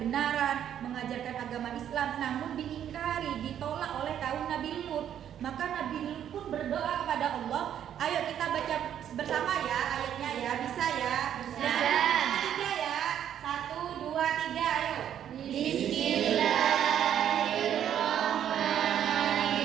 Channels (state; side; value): quieter; left; 9.9 dB